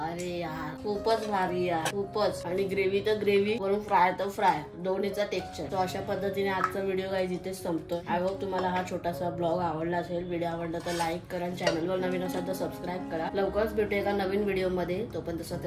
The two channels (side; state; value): both; identical; correlation 1.00